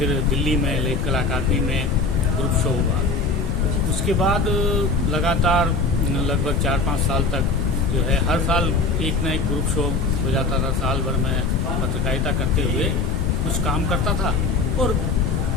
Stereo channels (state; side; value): noise; left; rumble, 1 dB below the sound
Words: दिल्ली में लेख कला अकादमी में ग्रुप शो हुआ। उसके बाद लगातार लगभग 4-5 साल तक जो है हर साल एक ना एक ग्रुप शो हो जाता था। साल भर में पत्रकारिता करते हुए कुछ काम करता था और